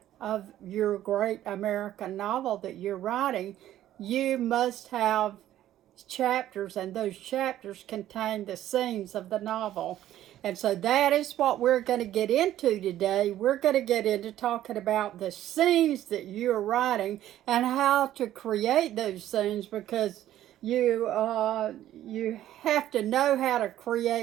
of your great American novel that you're writing, you must have chapters, and those chapters contain the scenes of the novel. And so that is what we're going to get into today. We're going to get into talking about the scenes that you're writing and how to create those scenes, because you have to know how to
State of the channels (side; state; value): left; quieter; 12.8 dB